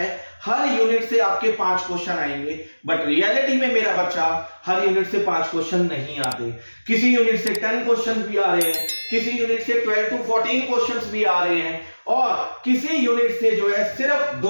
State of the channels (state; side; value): inverted; both; correlation -1.00